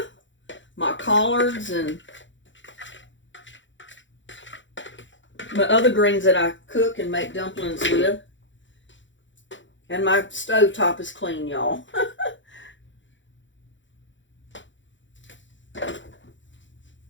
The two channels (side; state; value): right; late; 0.54 ms